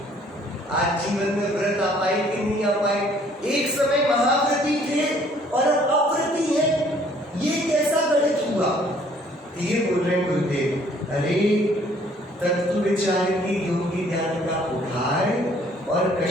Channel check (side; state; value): both; normal; correlation 0.60